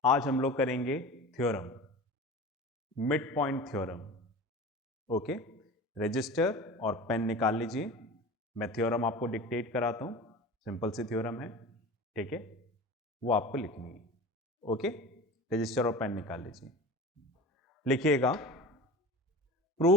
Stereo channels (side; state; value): both; normal; correlation 0.35